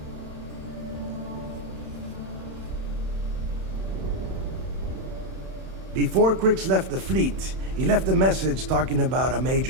Before Crix left the fleet, he left a message talking about a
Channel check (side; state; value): left; late; 31 ms